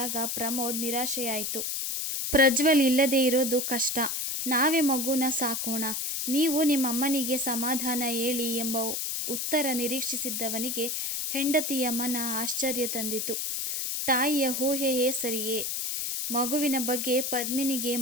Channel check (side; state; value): left; noise; hiss, 2 dB below the sound